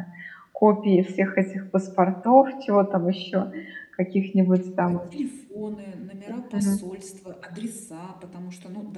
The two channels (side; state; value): both; identical; correlation 1.00